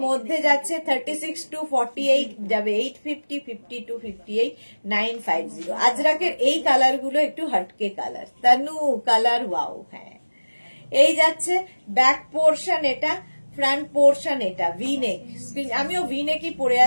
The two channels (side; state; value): both; inverted; correlation -1.00